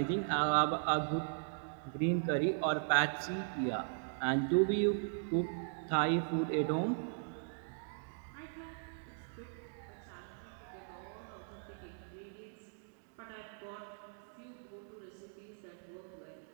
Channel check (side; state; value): left; silent; digital silence